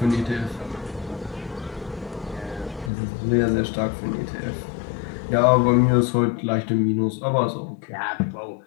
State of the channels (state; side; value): drops out; right; at 2.9 s